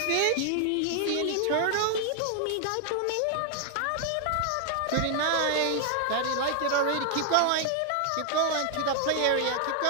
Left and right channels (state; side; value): different; both; correlation 0.00